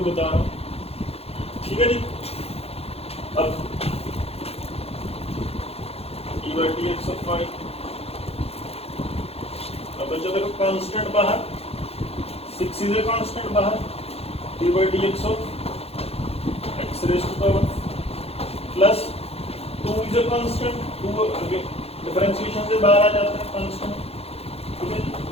बता रहा हूँ, ठीक है जी। अब dy/dx ऑफ 5, अब बच्चों देखो कांस्टेंट बाहर, 6 इज ए कांस्टेंट बाहर, dy/dx of x raise to power plus 2 is a constant, 2 differentiation से बाहर आ जाता है कांस्टेंट, ठीक है।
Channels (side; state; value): right; late; 0.29 ms